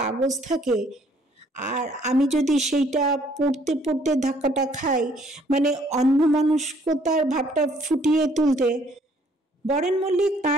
থাকে, আর আমি যদি সেইটা পড়তে পড়তে ধাক্কাটা খাই, মানে অন্যমনস্কতার ভাবটা ফুটিয়ে তুলতে। বরেন মল্লিক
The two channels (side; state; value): both; normal; correlation 0.63